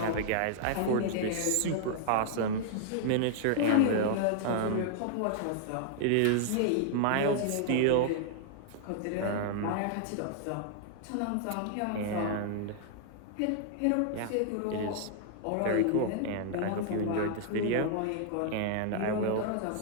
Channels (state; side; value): different; both; correlation -0.01